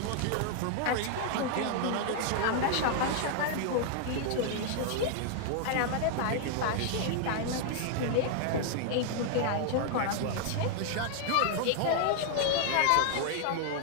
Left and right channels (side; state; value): both; different; correlation 0.00